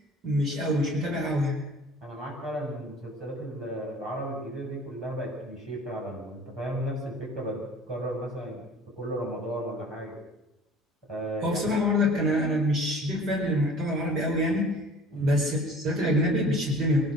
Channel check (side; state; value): both; normal; correlation 0.47